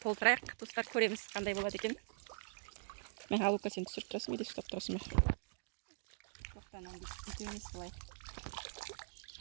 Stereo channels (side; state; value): left; silent; digital silence